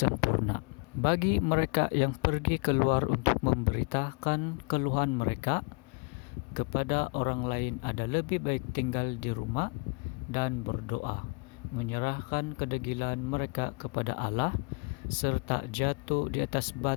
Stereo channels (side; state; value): right; quieter; 33.1 dB